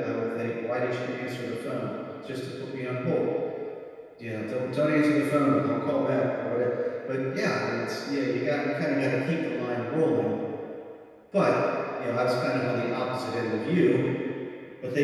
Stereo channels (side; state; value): both; identical; correlation 1.00